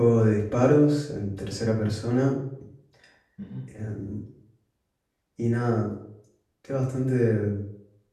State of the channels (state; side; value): identical; both; correlation 1.00